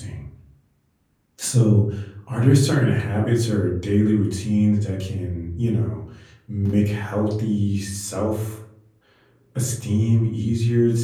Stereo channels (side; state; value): both; identical; correlation 1.00